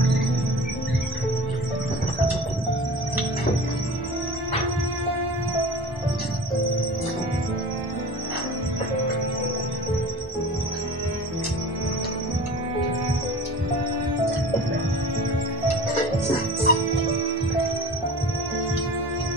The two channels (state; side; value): normal; both; correlation 0.38